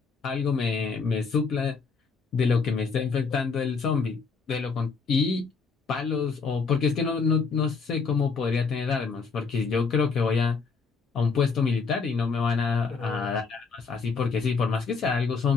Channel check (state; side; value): quieter; right; 5.0 dB